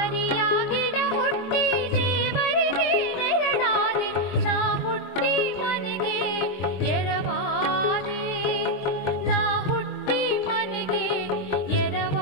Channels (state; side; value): late; right; 22 ms